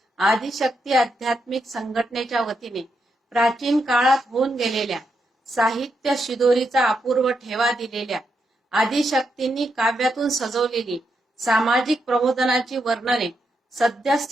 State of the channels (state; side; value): normal; both; correlation 0.82